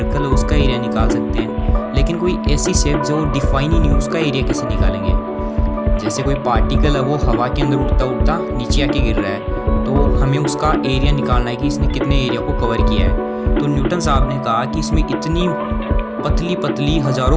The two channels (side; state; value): both; identical; correlation 1.00